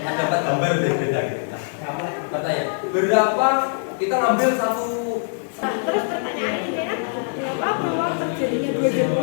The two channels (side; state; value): right; silent; digital silence